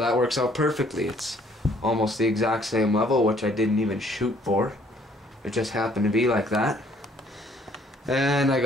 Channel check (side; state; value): both; normal; correlation 0.62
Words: works out perfectly. It's almost the exact same level, which I didn't even shoot for. It just happened to be like that. And I